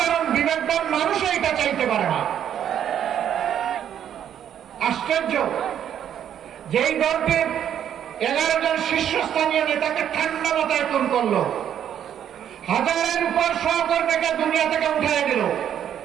বিবেকবান মানুষ এটা চাইতে পারে না। আশ্চর্য, যেই দলটির 11 জন শীর্ষস্থানীয় নেতাকে ঠান্ডা মাথায় খুন করলো, হাজারের উপর সহকর্মীকে দুনিয়া থেকে উঠিয়ে দিল,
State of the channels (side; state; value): left; quieter; 9.7 dB